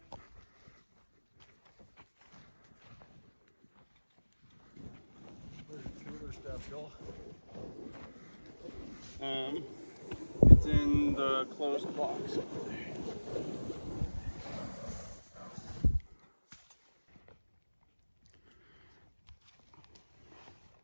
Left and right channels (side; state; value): both; inverted; correlation -1.00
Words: Where's the cooler stuff, Joel? It's in the closed box over there.